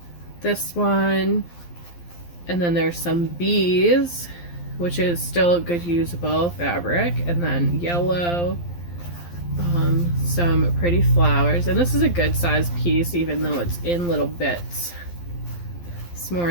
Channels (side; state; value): right; late; 12 ms